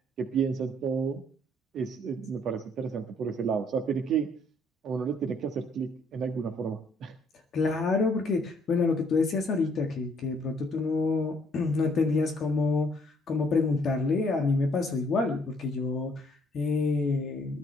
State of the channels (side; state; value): both; normal; correlation 0.65